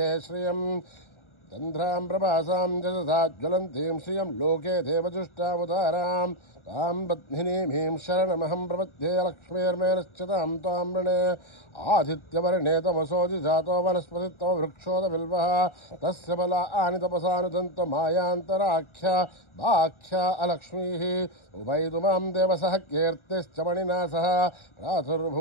श्रियं चन्द्रां प्रभासां जगसा ज्वलन्तीं श्रियं लोके देवजुष्टामुदारां तां पत्मिनीमीं शरणमहं प्रपद्ये लक्ष्मीर्मेनश्चितां त्वां वृणे आदित्यवर्णे तमसोऽधि जातो वनस्पतित्तम वृक्षोदबिल्वः तस्य बलानि तपसानुदन्तो मायान्तराख्या वाख्या अलक्ष्मीः उभयतु मां देवसः कीर्तिश्च मणिना सह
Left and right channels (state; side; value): late; right; 1.4 ms